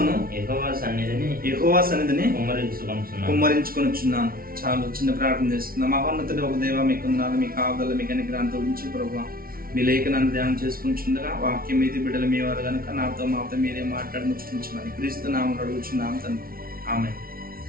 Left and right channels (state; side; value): late; left; 0.43 ms